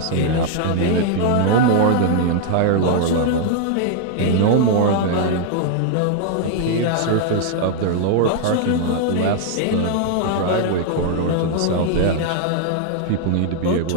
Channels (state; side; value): different; both; correlation 0.00